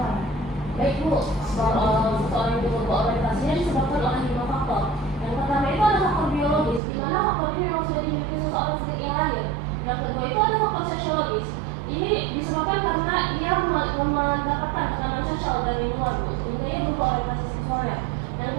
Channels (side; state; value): left; drops out; at 6.8 s